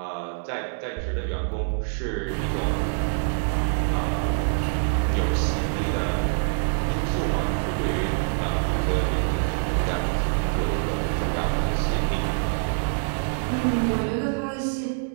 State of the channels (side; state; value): left; silent; 62 dB below the other